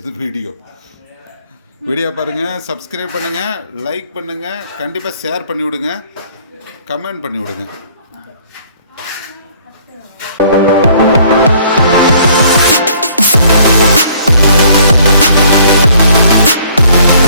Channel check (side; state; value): both; inverted; correlation -0.59